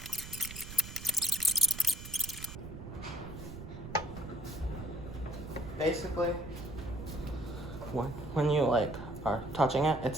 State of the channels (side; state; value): right; noise; rumble, 11 dB below the sound